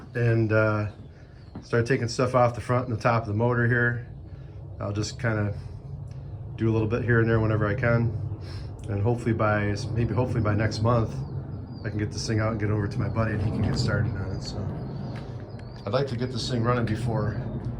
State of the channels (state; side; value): identical; both; correlation 1.00